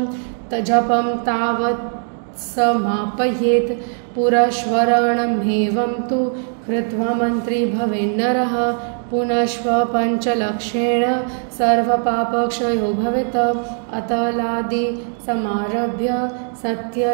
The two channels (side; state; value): left; silent; 56 dB below the other